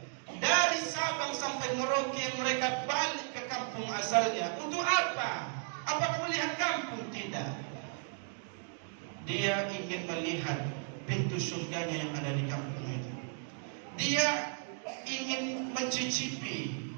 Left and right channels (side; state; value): left; silent; 55 dB below the other